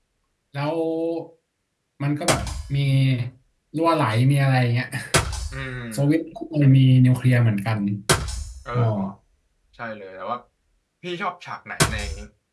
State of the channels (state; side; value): identical; both; correlation 1.00